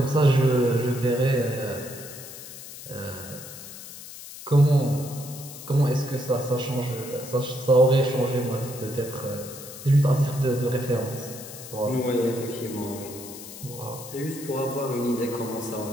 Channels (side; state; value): left; noise; hiss, 13 dB below the sound